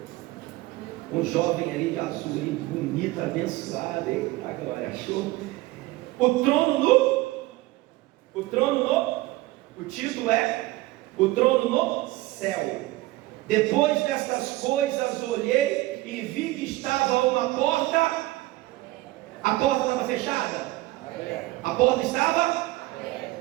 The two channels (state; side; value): quieter; left; 18.6 dB